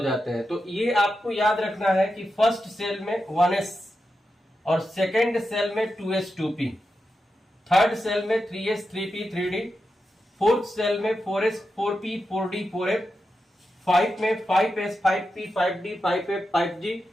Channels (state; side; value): normal; both; correlation 0.89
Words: जाते हैं। तो ये आपको याद रखना है कि फर्स्ट सेल में 1s और सेकेंड सेल में 2s 2p, थर्ड सेल में 3s 3p 3d, fourth shell में 4s 4p 4d 4f, 5 में 5s 5p 5d 5f 5g,